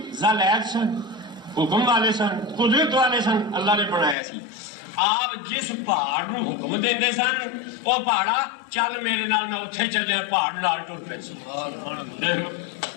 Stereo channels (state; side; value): drops out; right; at 4.2 s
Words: ذل عید سن، حکم والے سن، قدرت والے سن، اللہ نے بنایا سی۔ آپ جس پہاڑ نو حکم دیندے سن وہ پہاڑا چل میرے نال میں اتھے چلے، پہاڑ نال ٹر پے سن۔